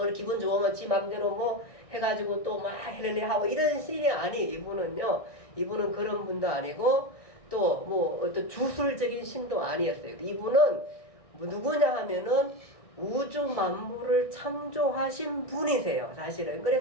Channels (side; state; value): right; late; 1.6 ms